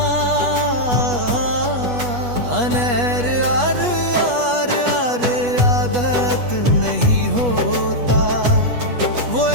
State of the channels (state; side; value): late; left; 8.3 ms